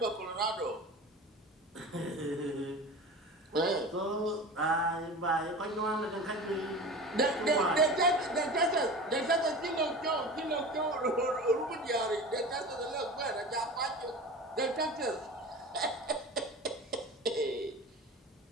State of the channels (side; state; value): both; normal; correlation 0.33